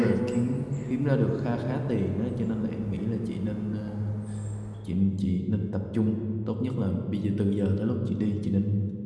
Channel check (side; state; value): both; identical; correlation 1.00